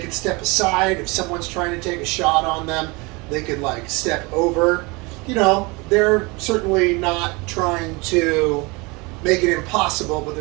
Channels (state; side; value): quieter; left; 26.3 dB